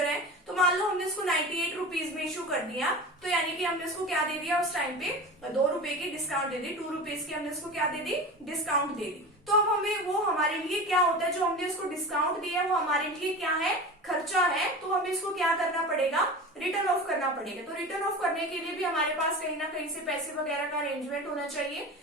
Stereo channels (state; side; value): normal; both; correlation 0.31